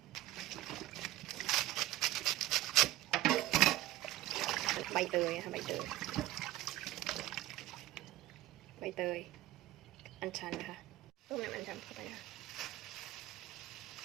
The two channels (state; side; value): quieter; left; 15.8 dB